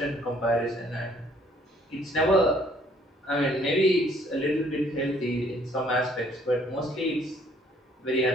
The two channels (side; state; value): both; normal; correlation 0.62